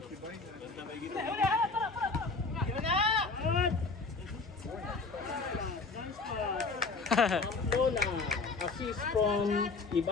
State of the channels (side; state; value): right; quieter; 4.1 dB